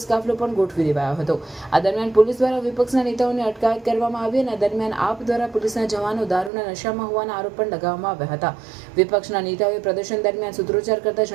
કાફલો પણ ગોઠવી દેવાયો હતો। આ દરમિયાન પોલીસ દ્વારા વિપક્ષના નેતાઓની અટકાયત કરવામાં આવી અને દરમિયાન આપ દ્વારા પોલીસના જવાનો દારૂના નશામાં હોવાના આરોપ પણ લગાવવામાં આવ્યા હતા। વિપક્ષના નેતાઓએ પ્રદર્શન દરમિયાન સૂત્રોચ્ચાર કરતા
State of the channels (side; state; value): left; drops out; at 6.5 s